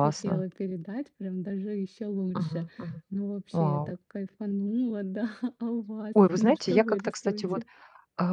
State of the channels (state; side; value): identical; both; correlation 1.00